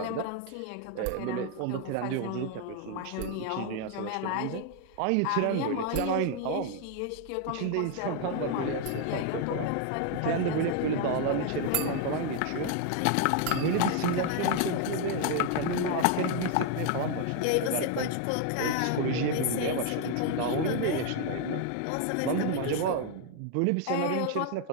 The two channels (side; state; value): both; different; correlation 0.00